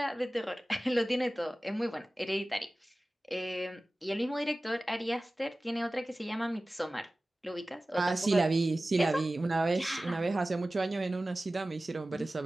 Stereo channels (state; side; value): normal; both; correlation 0.97